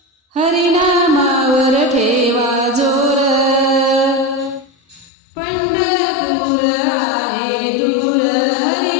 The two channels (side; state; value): right; drops out; at 5.1 s